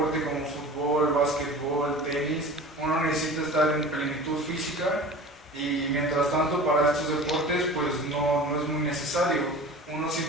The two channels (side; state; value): both; normal; correlation 0.38